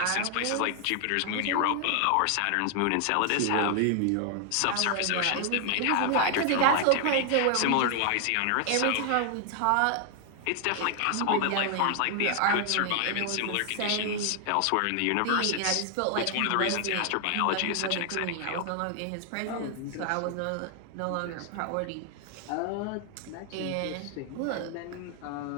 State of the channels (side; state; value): both; different; correlation 0.00